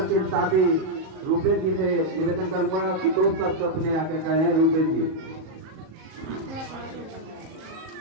साथी रूपेश जी से निवेदन करूंगा कि 2 शब्द अपने आके कहें। रूपेश जी,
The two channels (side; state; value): left; late; 38 ms